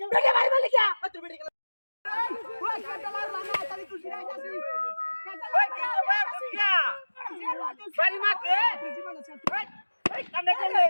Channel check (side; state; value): both; inverted; correlation -1.00